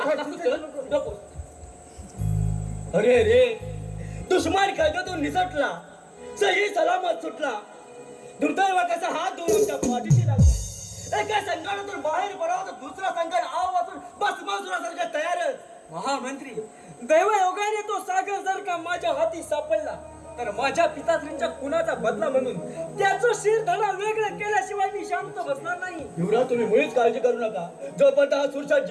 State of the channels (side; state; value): both; identical; correlation 1.00